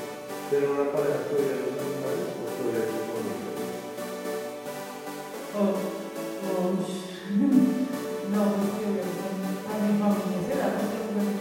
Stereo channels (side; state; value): both; identical; correlation 1.00